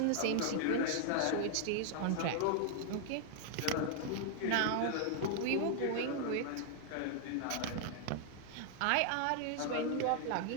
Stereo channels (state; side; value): different; both; correlation 0.00